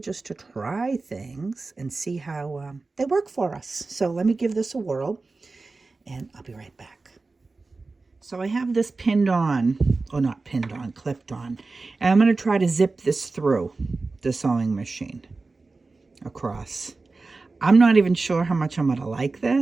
just to try things and see how they work for us. So let me give this a whirl and I'll be right back. So I have this pinned on, or not pinned on, clipped on. And I'm going to try to zip this through the sewing machine across. I'm not even sure how much I'm going to like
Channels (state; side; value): quieter; left; 3.7 dB